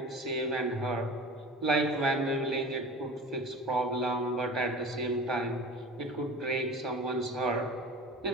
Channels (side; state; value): both; normal; correlation 0.36